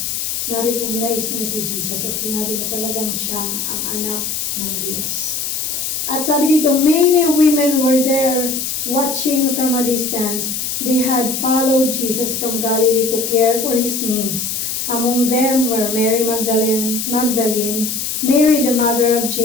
na-recognize niya si Jesus at sinabi na talagang siya ang anak ng Diyos. At sabi dito, many women were there watching from a distance. They had followed Jesus from Galilee to care for His needs. Among them were Mary Magdalene, Mary the mother of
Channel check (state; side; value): noise; left; hiss, 2 dB below the sound